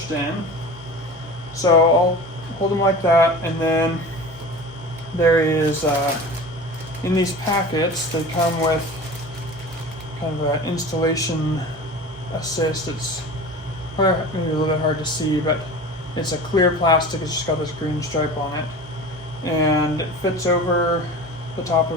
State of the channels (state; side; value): normal; both; correlation 0.35